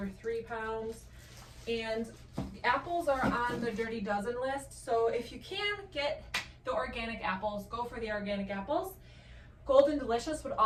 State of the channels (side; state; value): both; identical; correlation 1.00